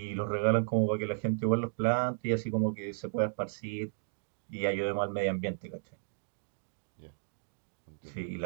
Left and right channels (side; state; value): left; silent; digital silence